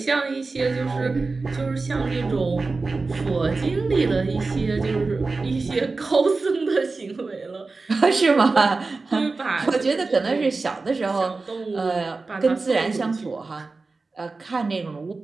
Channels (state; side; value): quieter; left; 3.8 dB